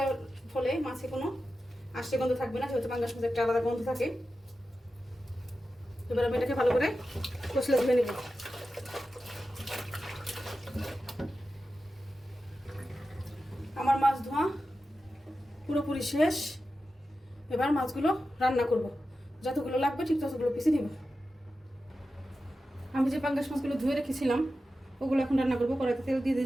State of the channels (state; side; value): normal; both; correlation 0.92